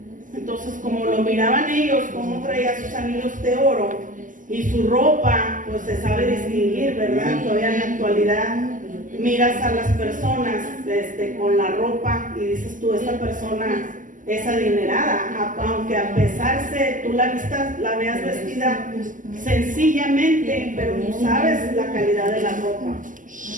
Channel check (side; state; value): left; late; 0.38 ms